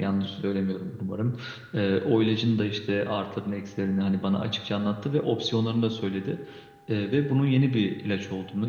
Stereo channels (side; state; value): both; identical; correlation 1.00